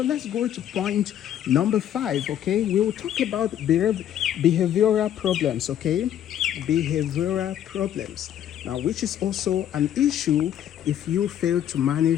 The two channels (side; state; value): right; quieter; 10.7 dB